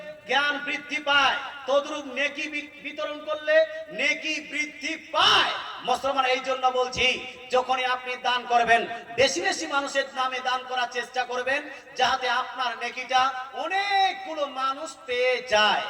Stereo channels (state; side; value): identical; both; correlation 1.00